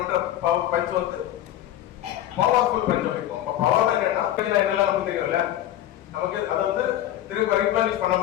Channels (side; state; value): right; quieter; 12.7 dB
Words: பஞ்ச் வந்து பவர்ஃபுல் பஞ்ச் வைப்போம். அப்ப பவர் என்னன்னா என்னெல்லாம் நமக்கு தெரியும்ல, நமக்கு அதை வந்து திரும்ப ரீப்ளனிஷ் பண்ண